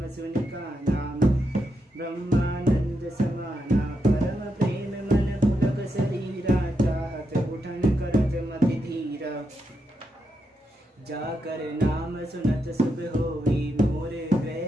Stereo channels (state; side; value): normal; both; correlation 0.83